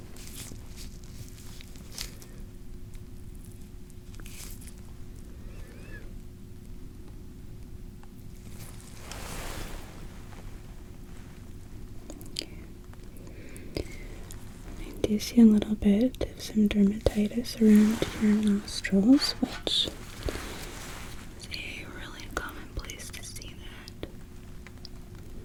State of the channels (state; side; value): identical; both; correlation 1.00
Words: I do see a little bit of some dermatitis around your nostrils, which is a really common place to see that.